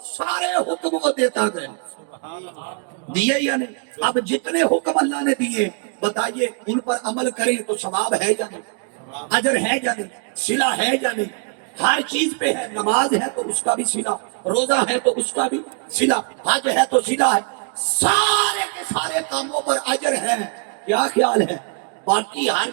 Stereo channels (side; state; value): left; quieter; 39.5 dB